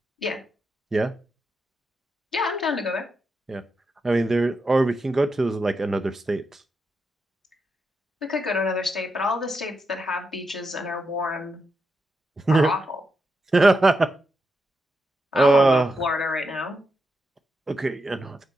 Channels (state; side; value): normal; both; correlation 0.85